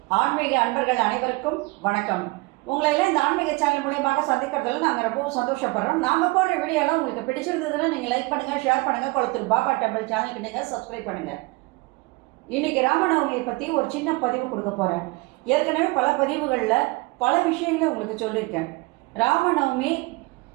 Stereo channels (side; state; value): left; quieter; 24.6 dB